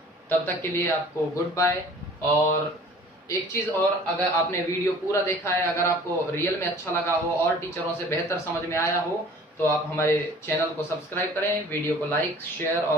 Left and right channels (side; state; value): both; normal; correlation 0.49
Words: तब तक के लिए आपको गुड बाय। और एक चीज और, अगर आपने वीडियो पूरा देखा है, अगर आपको रियल में अच्छा लगा हो और टीचरों से बेहतर समझ में आया हो, तो आप हमारे चैनल को सब्सक्राइब करें, वीडियो को लाइक शेयर